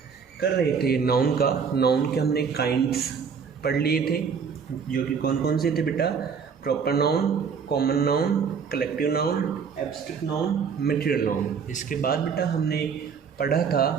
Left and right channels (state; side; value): quieter; left; 6.3 dB